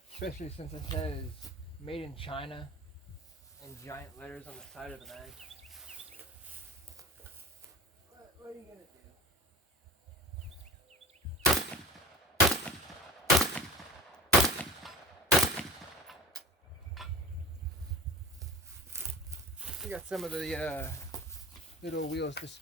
especially since it says made in China in giant letters on the side of the mag. What are you gonna do? We got some of the little wheels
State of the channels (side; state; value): both; normal; correlation 0.36